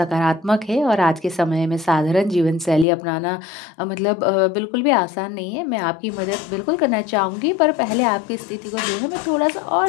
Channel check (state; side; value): drops out; right; at 2.9 s